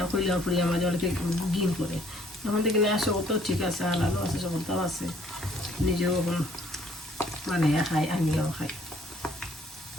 কইলে কোরিয়ান মাঝে অনেকে গিন করে, তখন থেকে না সকলটাও ঠিক আছে, হালালও আছে, সকলটাও আছে, নিজেও এখন মানে খাই, আমিও খাই।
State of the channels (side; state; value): both; normal; correlation 0.62